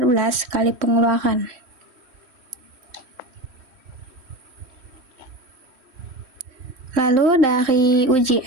kali pengeluaran. Lalu dari uji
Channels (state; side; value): late; left; 3.1 ms